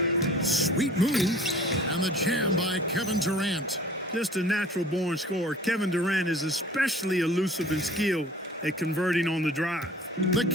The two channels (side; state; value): both; normal; correlation 0.48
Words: Sweet move. And the jam by Kevin Durant. Just a natural-born scorer. Kevin Durant is especially elusive and skilled at converting on the drive. The